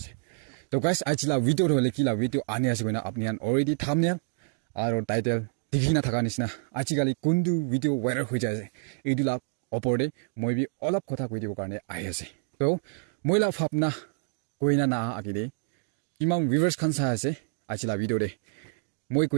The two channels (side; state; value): left; silent; 59 dB below the other